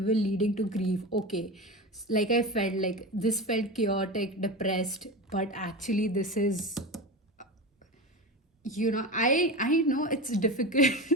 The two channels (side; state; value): both; normal; correlation 0.25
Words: leading to grief. Okay, like I felt like this felt chaotic, depressed, but actually this is, I know it's difficult